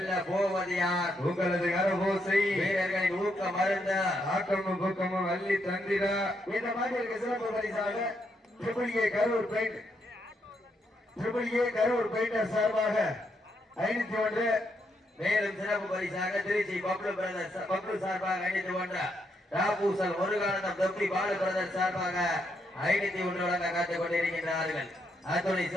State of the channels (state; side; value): normal; both; correlation 0.78